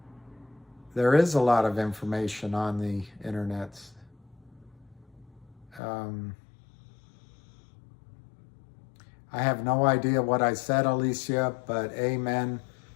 There is a lot of information on the internet. I have no idea what I said, Alicia, but amen,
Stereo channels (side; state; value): right; drops out; at 5.8 s